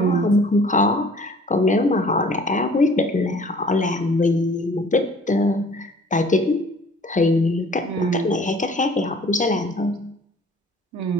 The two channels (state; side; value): normal; both; correlation 0.52